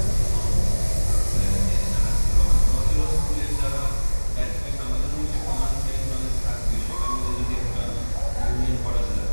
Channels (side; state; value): both; inverted; correlation -1.00